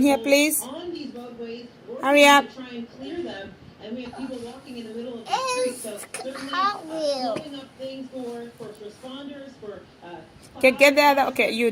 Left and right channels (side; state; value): both; identical; correlation 1.00